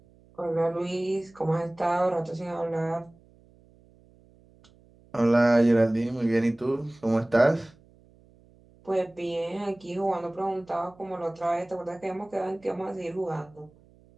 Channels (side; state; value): right; noise; hum, 28 dB below the sound